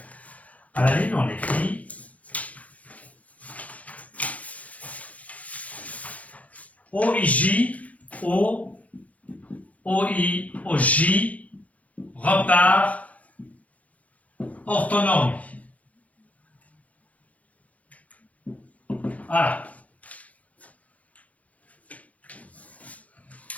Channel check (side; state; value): right; late; 0.067 ms